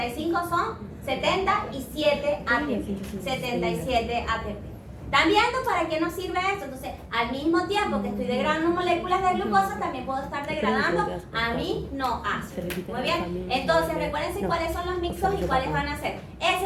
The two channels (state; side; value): identical; both; correlation 1.00